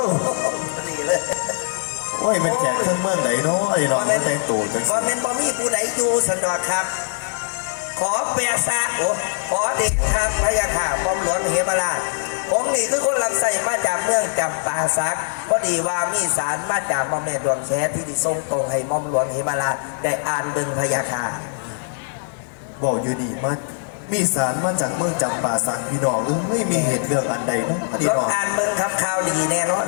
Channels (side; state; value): right; silent; 64 dB below the other